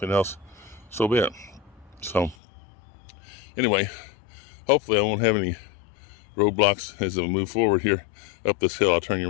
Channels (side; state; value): right; drops out; at 2.4 s